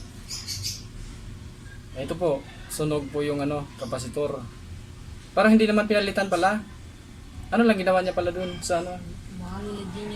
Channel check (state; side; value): identical; both; correlation 1.00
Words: Ito po, sunog po yung ano, kapasitor. Parang hindi naman pinalitan pala. Ano lang ginawa niya pala dun sa ano? Baka nilagyan